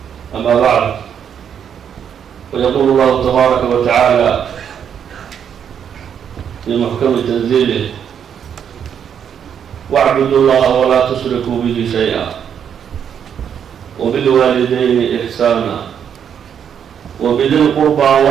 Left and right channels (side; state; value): left; quieter; 8.3 dB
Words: أما بعد فيقول الله تبارك وتعالى في محكم تنزيله واعبدوا الله ولا تشركوا به شيئا وبالوالدين إحسانا وبذي القربى